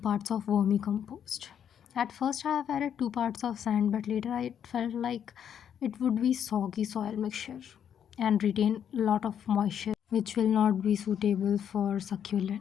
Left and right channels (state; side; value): quieter; right; 8.8 dB